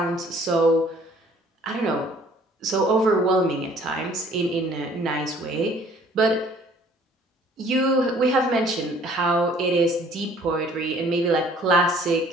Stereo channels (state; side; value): normal; both; correlation 0.56